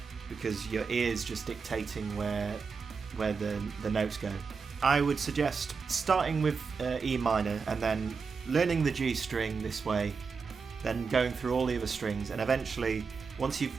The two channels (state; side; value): quieter; left; 5.2 dB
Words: because your ear's just dictating where the notes go. I would suggest starting with E minor and then learning the G string this way, then going through all the other strings, and eventually once you've